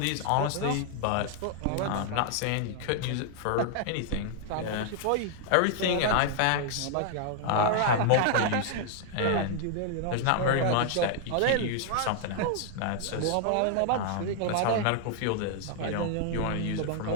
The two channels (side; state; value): both; different; correlation 0.00